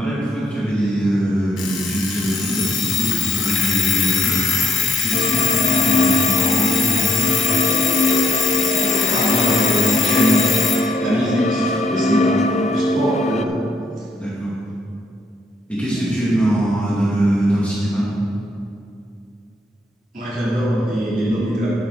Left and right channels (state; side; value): normal; both; correlation 0.66